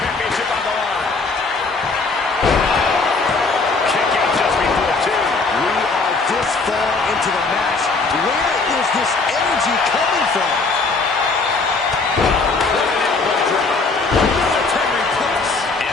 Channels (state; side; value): quieter; right; 3.9 dB